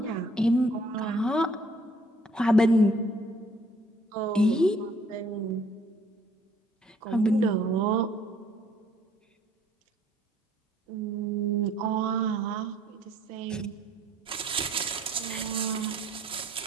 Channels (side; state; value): both; normal; correlation 0.61